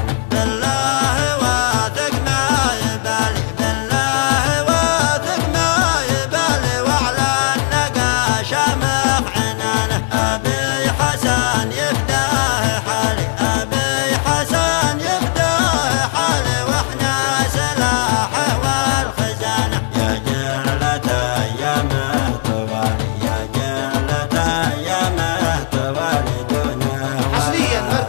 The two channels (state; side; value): silent; right; digital silence